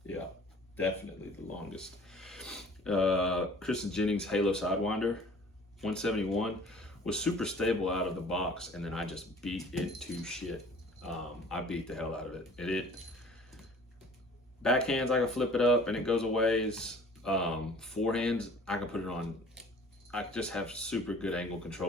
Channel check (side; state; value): both; normal; correlation 0.49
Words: Yeah, definitely the longest. Kristen Jennings Halo Sidewinder 171 was super stable out of the box, and then I just beat it to shit. I beat the hell out of it. Backhands, I can flip it up and it goes a ways. Forehands, I can put it on. I just have super good angle